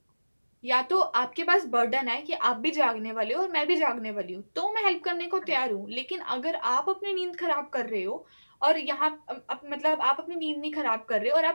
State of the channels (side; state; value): both; inverted; correlation -1.00